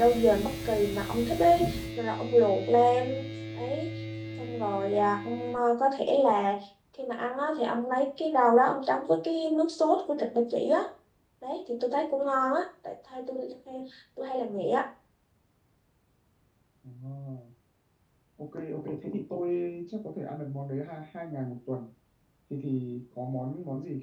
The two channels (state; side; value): identical; both; correlation 1.00